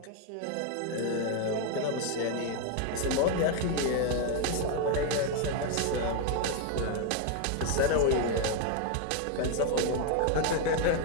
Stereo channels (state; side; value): different; both; correlation 0.01